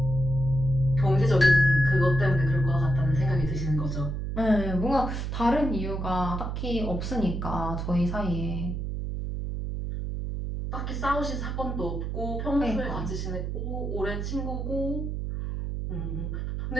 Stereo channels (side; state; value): right; noise; hum, 3 dB below the sound